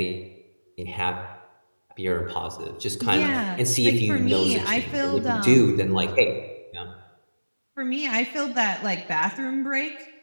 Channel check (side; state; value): both; inverted; correlation -1.00